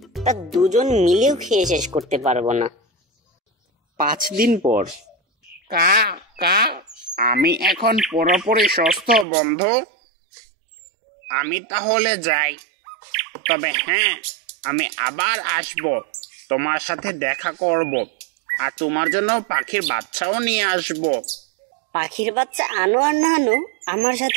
তা দুজন মিলেও খেয়ে শেষ করতে পারবো না। 5 দিন পর। কা কা আমি এখন পুরোপুরি সুস্থ বন্ধু। আমি তাহলে যাই। তবে হ্যাঁ, আমি আবার আসব, তোমার সাথে দেখা করব, আর তোমার জন্য পাখির বাচ্চাও নিয়ে আসব। পাখির বাচ্চা আনো আর না আনো, আমার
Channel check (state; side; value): drops out; left; at 9.2 s